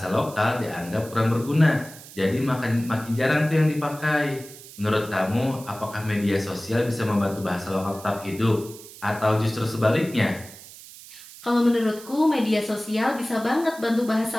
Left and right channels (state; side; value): noise; right; hiss, 17 dB below the sound